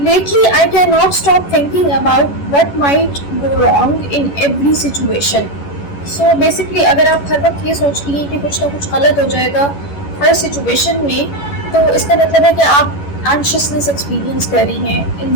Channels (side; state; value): right; late; 11 ms